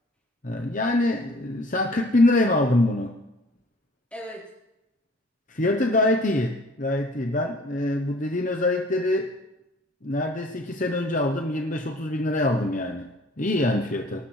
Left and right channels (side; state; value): both; normal; correlation 0.52